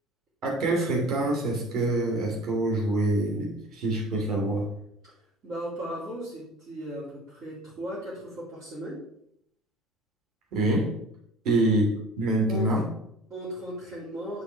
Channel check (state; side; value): normal; both; correlation 0.44